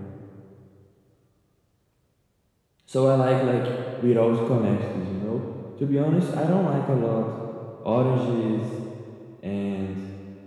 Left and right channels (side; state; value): both; identical; correlation 1.00